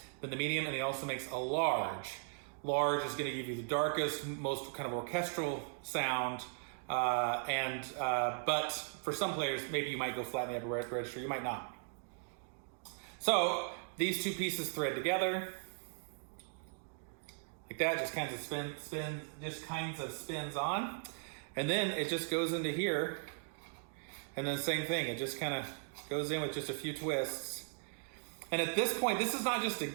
Then the medium, and he also makes a large. Large is going to give you the darkest, most kind of orchestral sound. But for some players, maybe you might go flat in the upper register, you might not. So these two pieces thread together like that, just kinds of spins on. And then it just goes into here, and then same thing. It just kind of goes in with just a few twists. And at this point, this is not just a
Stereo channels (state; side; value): silent; left; digital silence